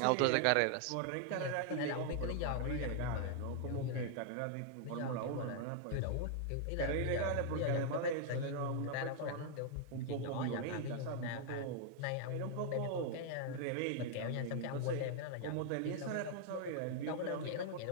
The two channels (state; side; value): different; both; correlation -0.01